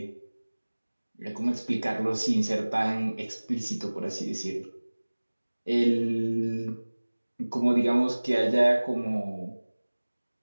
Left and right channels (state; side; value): inverted; both; correlation -1.00